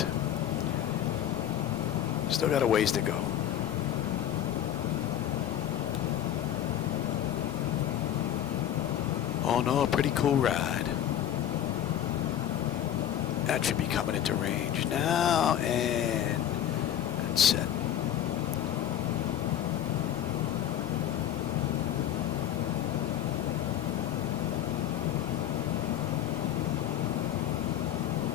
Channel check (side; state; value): right; quieter; 10.9 dB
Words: Still got a ways to go. Oh no, a pretty cool ride. That should be coming into range now, and that's set.